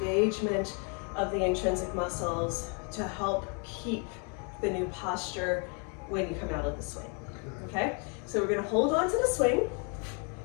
engagement of the intrinsic muscles to help keep the new posture when you come out of the swing. Okay? So we're going to hold on to the swing.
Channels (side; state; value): right; quieter; 37.9 dB